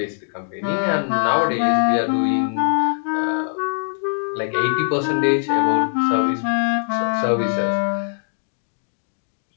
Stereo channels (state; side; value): silent; right; digital silence